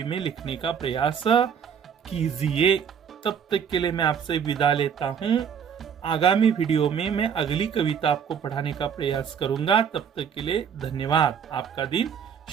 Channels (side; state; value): left; quieter; 7.5 dB